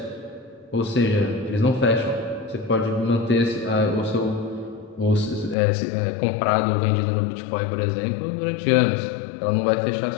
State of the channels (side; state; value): right; drops out; at 5.6 s